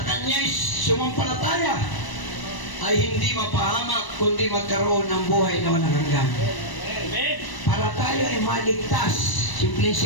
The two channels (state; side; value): late; right; 1.0 ms